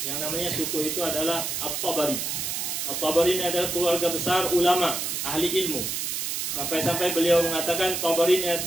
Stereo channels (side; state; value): right; noise; hiss, 2 dB below the sound